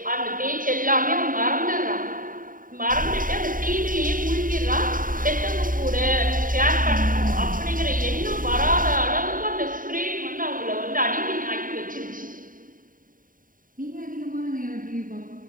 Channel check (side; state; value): left; late; 0.40 ms